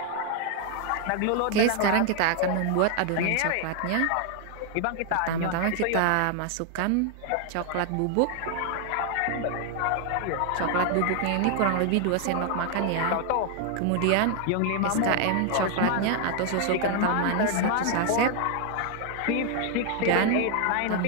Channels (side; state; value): both; different; correlation 0.00